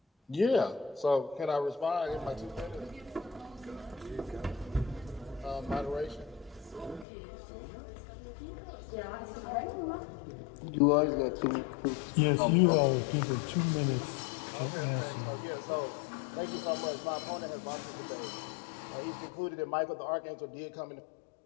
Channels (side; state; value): right; drops out; at 7.1 s